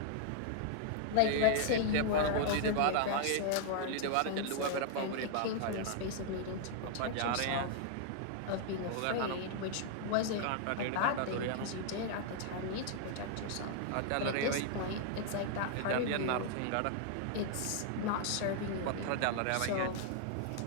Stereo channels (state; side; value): different; both; correlation 0.00